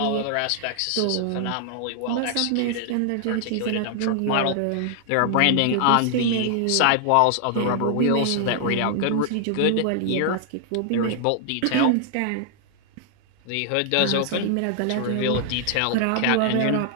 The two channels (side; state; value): both; different; correlation 0.00